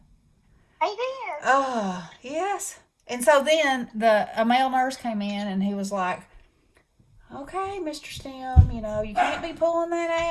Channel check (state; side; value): identical; both; correlation 1.00